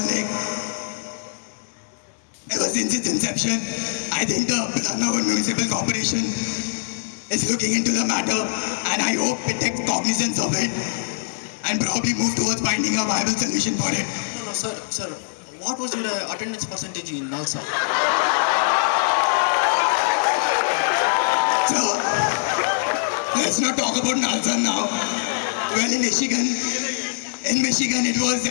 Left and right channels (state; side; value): silent; right; digital silence